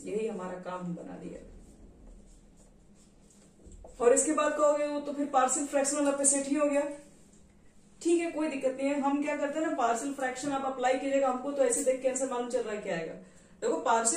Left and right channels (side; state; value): both; identical; correlation 1.00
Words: यही हमारा काम हम बना दिया। और इसके बाद कहोगे वो तो फिर पार्शियल फ्रैक्शन वाला सेट ही हो गया। ठीक है, कोई दिक्कत नहीं है। हम क्या करते हैं ना, पार्शियल फ्रैक्शन आप अप्लाई कीजिएगा, हमको तो ऐसे देख के आंसर मालूम चल रहा है क्या आएगा। देखो